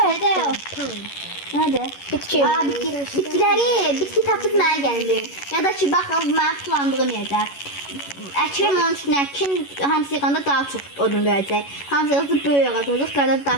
Hadi. Hadi. Bitki. Aa, bitki tapdık mənə gəldi. Ya da ki, baxın, mən planladığım yerdə. Əkirəm onun üçün əkin, hamısı yığanda daha çox odun verəcək. Hamısı yığında böyük ağac olacaq, qada daha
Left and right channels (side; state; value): right; late; 11 ms